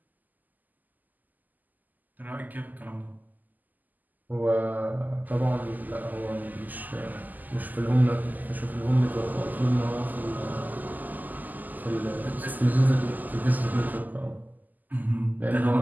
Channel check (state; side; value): late; left; 0.083 ms